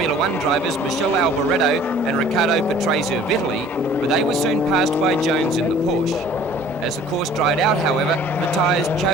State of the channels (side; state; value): both; normal; correlation 0.51